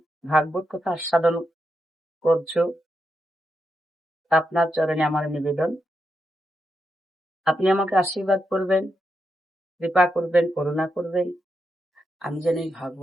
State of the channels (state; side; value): normal; both; correlation 0.85